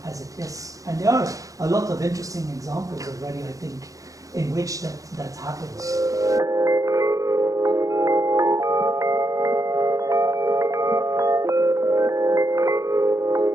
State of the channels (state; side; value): late; left; 0.16 ms